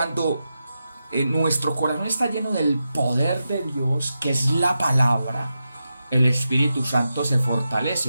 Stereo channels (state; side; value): inverted; both; correlation -0.89